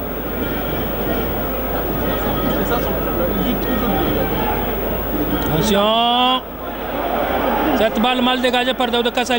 Attention! Cette balle mal dégagée par Daouda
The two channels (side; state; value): both; normal; correlation 0.97